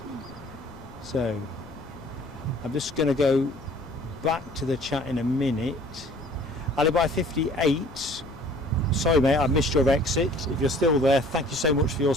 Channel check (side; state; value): left; noise; rumble, 22 dB below the sound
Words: So, I'm just going to go back to the chat in a minute. Alibi 58. Sorry, mate, I missed your exit. If you're still there, thank you so much for your